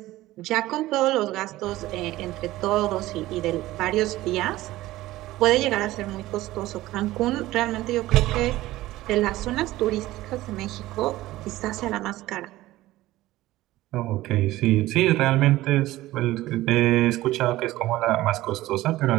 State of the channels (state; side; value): quieter; left; 16.8 dB